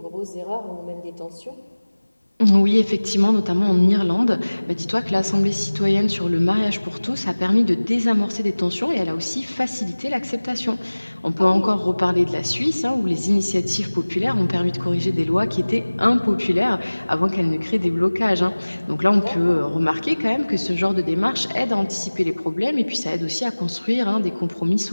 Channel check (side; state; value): both; inverted; correlation -1.00